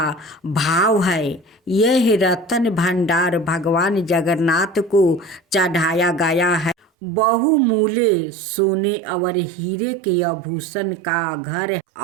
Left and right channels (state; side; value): drops out; left; at 6.9 s